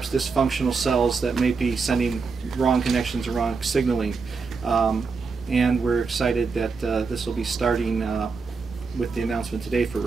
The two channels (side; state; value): left; quieter; 4.7 dB